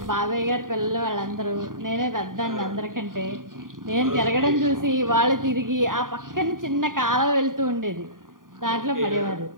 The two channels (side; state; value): left; late; 0.90 ms